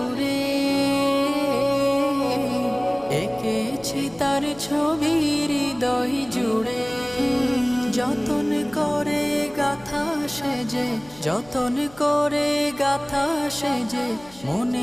এঁকেছি তার ছবি হৃদয় জুড়ে। যতন করে গাথা সেজে, যতন করে গাথা সেজে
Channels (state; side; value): noise; left; hum, 23 dB below the sound